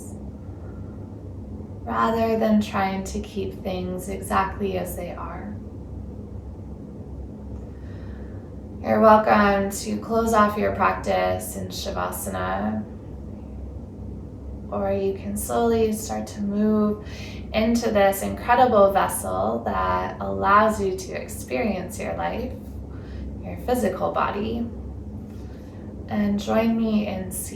rather than trying to keep things exactly as they are. You're welcome to close off your practice in Shavasana, or you can slowly start to move into this incredible vessel that allows you to experience your life, your physical body, and join me in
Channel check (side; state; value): both; identical; correlation 1.00